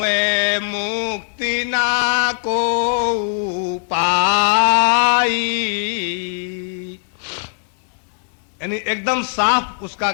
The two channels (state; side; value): silent; right; digital silence